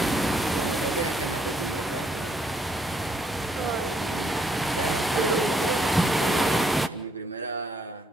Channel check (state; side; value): normal; both; correlation 0.71